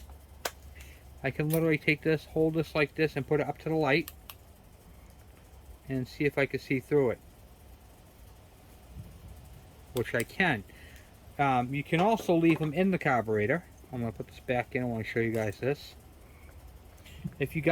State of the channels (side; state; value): both; identical; correlation 1.00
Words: I can literally take this, hold this like this, and put it up to the light and see if I can see through it, which I can. You can also leave them in the carburetor. I'm going to put this back in. I want to show you guys this. If you